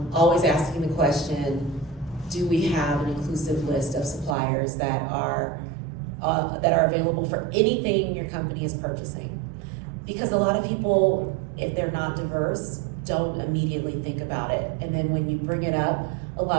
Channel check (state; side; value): drops out; left; at 4.4 s